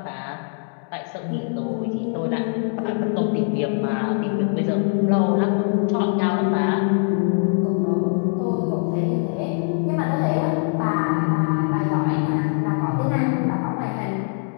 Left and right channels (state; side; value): silent; right; 56 dB below the other